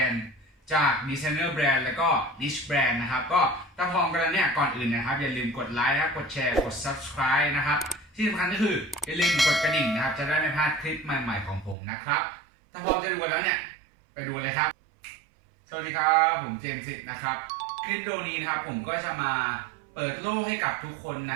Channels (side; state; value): left; drops out; at 11.8 s